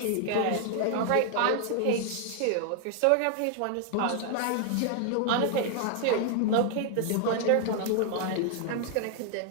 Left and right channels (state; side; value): different; both; correlation 0.00